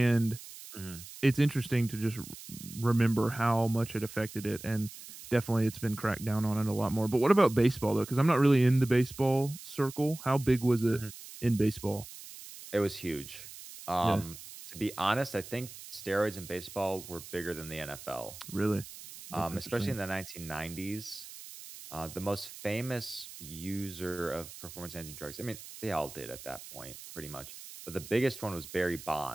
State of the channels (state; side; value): noise; right; hiss, 14 dB below the sound